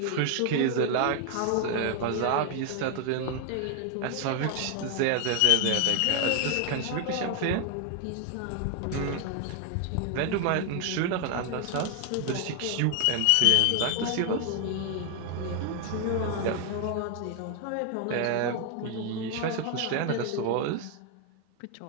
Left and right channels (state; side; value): different; both; correlation 0.00